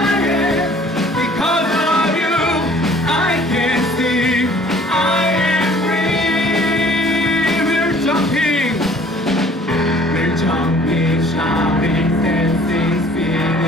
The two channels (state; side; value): normal; both; correlation 0.53